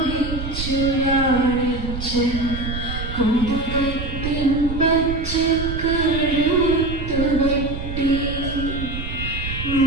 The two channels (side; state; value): right; noise; rumble, 6 dB below the sound